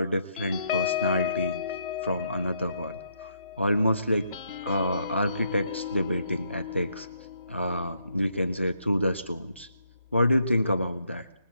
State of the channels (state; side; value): inverted; both; correlation -0.73